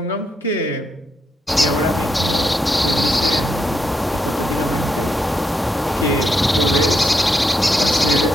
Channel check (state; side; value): normal; both; correlation 0.81